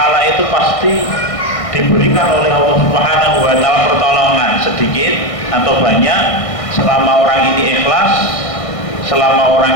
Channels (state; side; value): late; right; 1.6 ms